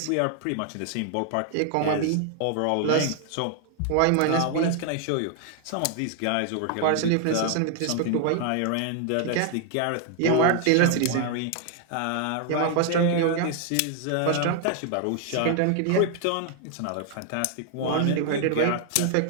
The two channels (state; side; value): different; both; correlation 0.00